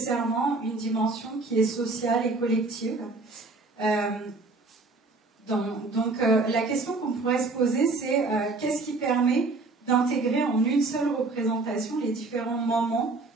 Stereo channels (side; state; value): left; quieter; 3.5 dB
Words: une dimension qui est sociale et collective. La question qu'on pourrait se poser, c'est qu'est-ce qui permet d'intégrer en une seule représentation les différents moments